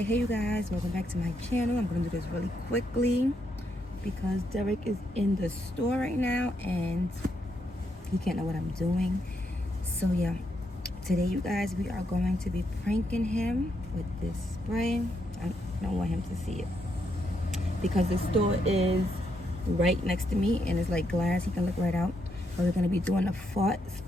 hey you guys, welcome back to my channel. I'm gonna do this really quickly because Derek is in the store right now and he can't know what I'm doing. So yeah, today you guys, we are going to be pranking him with this spray. I don't want him to see it because the store is right next to me and it's like glass, he can look right out. But we're gonna be doing the fart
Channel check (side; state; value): both; normal; correlation 0.78